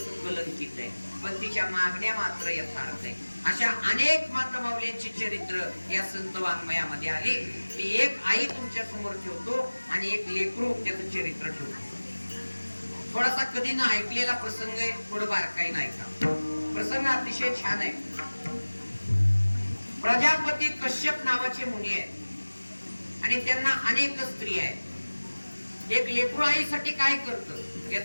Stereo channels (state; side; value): inverted; both; correlation -1.00